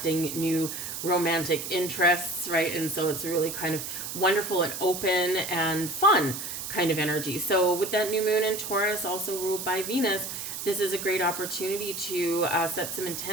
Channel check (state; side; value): noise; right; hiss, 6 dB below the sound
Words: new romantic interests, right? And so it's really kind of wonderful and open and fun kind of energy. So with that new moon in Taurus, also ruled by Venus, this is a great opportunity to set some